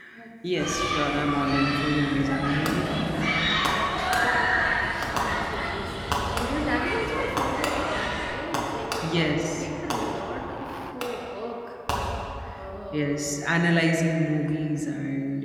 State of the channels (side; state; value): both; identical; correlation 1.00